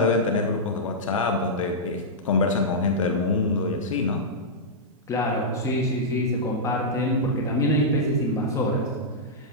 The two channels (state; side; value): normal; both; correlation -0.10